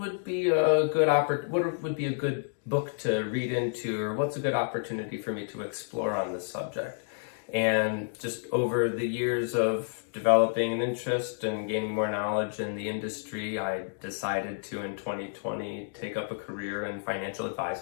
be a good book to read into, or what's a good opportunity for me to explore on this subject? And just over the years of developing an interest and gaining more knowledge in the industry, I decided to, in 2020, take up a career in financial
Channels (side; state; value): right; silent; digital silence